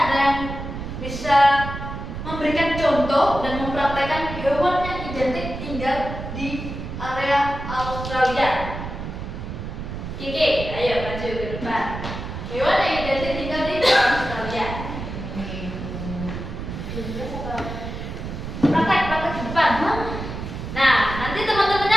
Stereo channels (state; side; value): noise; right; rumble, 7 dB below the sound